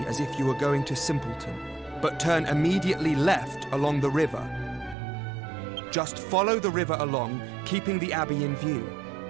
as if you were going to Simpleton, but turn immediately left along the river. Just follow the river along, keeping the abbey in view.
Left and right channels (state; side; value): drops out; left; at 5.0 s